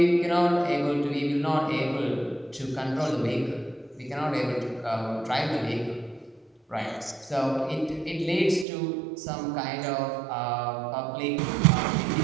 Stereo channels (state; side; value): drops out; left; at 8.7 s